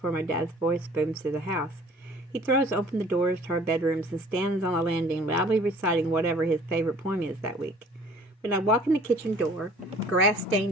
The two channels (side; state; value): both; normal; correlation 0.51